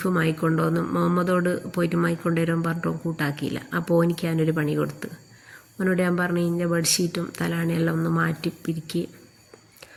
വാങ്ങിക്കൊണ്ടുവന്ന് മുഹമ്മദോട് പോയിട്ട് വാങ്ങിക്കൊണ്ടുവരാൻ പറഞ്ഞിട്ടും കൂട്ടാക്കിയില്ല. അപ്പോൾ എനിക്ക് ഞാനൊരു പണി കൊടുത്ത് അവനോട് ഞാൻ പറഞ്ഞു, ഇതിൻ്റെ ബെഡ്ഷീറ്റും തലാണിയെല്ലാം ഒന്ന് മാറ്റി പിരിക്കി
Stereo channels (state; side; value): identical; both; correlation 1.00